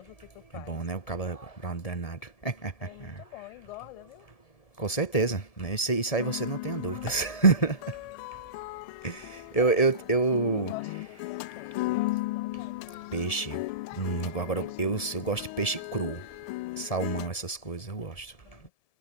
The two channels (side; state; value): right; late; 1.7 ms